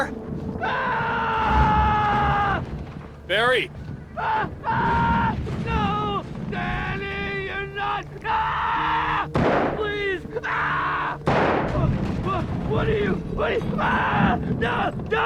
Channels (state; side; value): identical; both; correlation 1.00